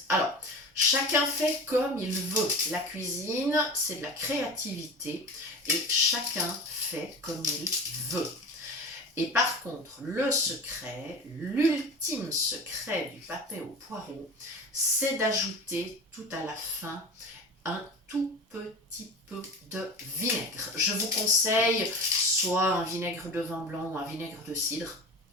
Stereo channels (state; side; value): normal; both; correlation 0.33